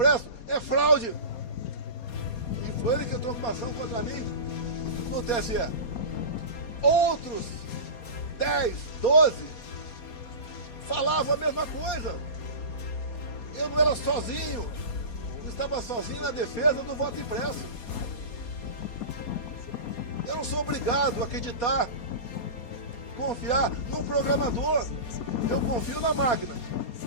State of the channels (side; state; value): right; late; 4.2 ms